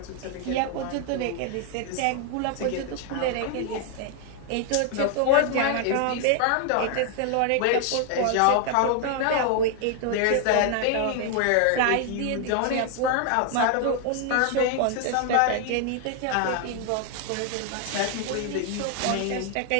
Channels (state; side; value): different; both; correlation 0.00